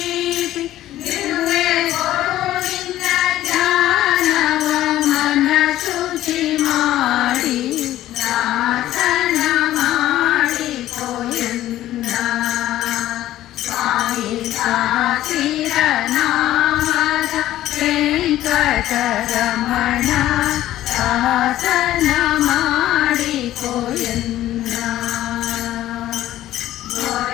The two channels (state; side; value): quieter; right; 13.8 dB